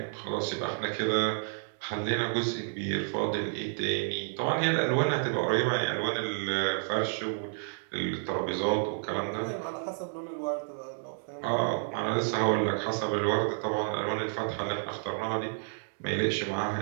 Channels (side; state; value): left; silent; digital silence